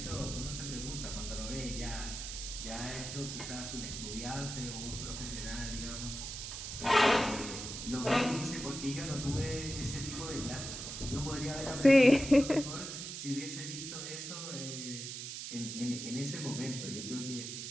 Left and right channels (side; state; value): right; noise; hiss, 7 dB below the sound